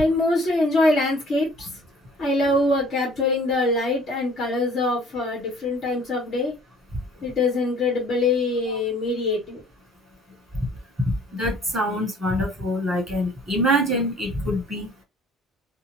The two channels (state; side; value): normal; both; correlation 0.54